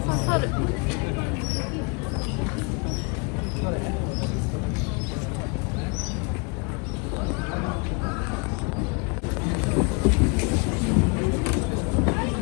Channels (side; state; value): right; quieter; 31.8 dB